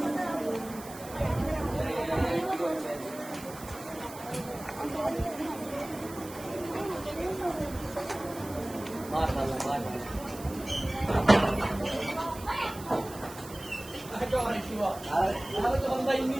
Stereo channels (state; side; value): noise; right; hiss, 16 dB below the sound